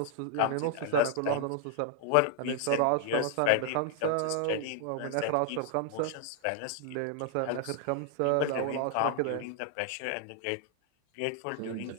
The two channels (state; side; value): different; both; correlation 0.00